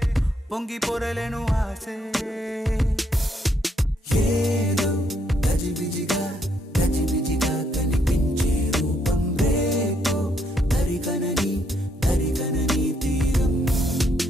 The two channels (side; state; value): both; normal; correlation 0.73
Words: పొంగి పొరలేను ఆసే ఏదో గజిబిజిగా గజిబిజిగా కనిపించే రూపం రేపో తరిగనని తరిగనని తీరం